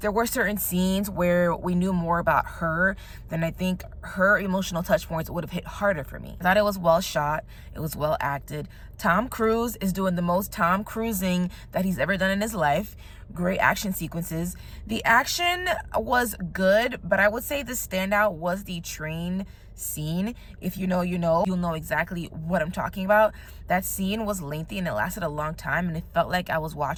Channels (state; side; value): identical; both; correlation 1.00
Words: there were certain scenes where we knew more about her, then I think her emotional touch points would have hit harder for me. I thought it was well shot. It was well acted. Tom Cruise is doing the most Tom Cruising that he's ever done in his life. Great action sequences. The action was good, but I would say the standout was the train scene. If you know, you'll know exactly what I'm talking about. That scene was lengthy and it lasted a long time, and it felt like I was